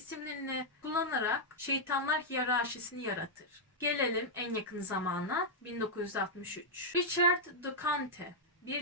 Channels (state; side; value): normal; both; correlation -0.05